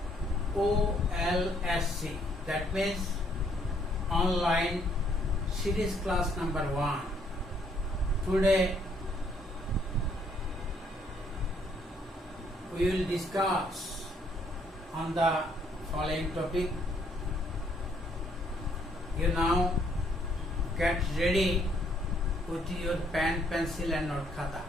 OLSC, that means online series class number 1. Today we will discuss on the following topic. You now get ready with your pen, pencil and note khata.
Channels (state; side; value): normal; both; correlation 0.68